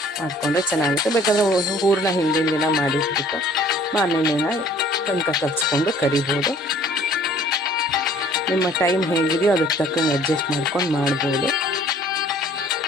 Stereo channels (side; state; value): both; normal; correlation 0.54